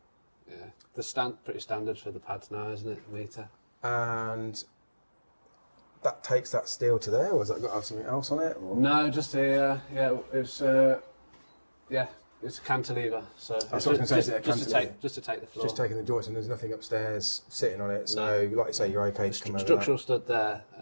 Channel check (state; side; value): inverted; both; correlation -1.00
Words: Yeah. Pretty standard for the pads now, isn't it? A metre. And that takes that steel to there, or has that got to have something else on it? Or? No, just a, it's a cantilever. So That's what I was going to say, is it a cantilever? just to take the floor. Just taking the joist, and there's nothing upstairs sitting on it, so like you say, you're okay to come over Structural that. stud